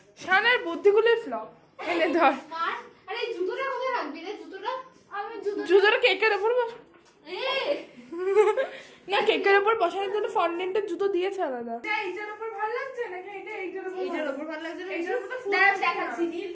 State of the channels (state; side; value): identical; both; correlation 1.00